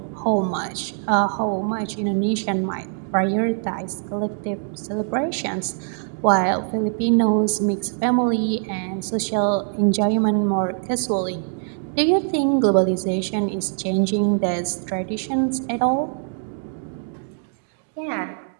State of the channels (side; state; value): left; silent; digital silence